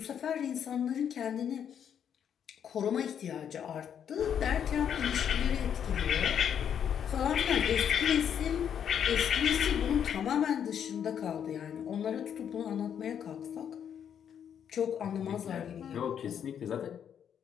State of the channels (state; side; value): quieter; right; 8.6 dB